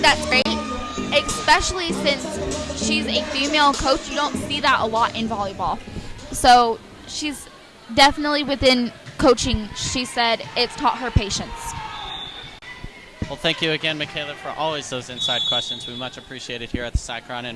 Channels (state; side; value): identical; both; correlation 1.00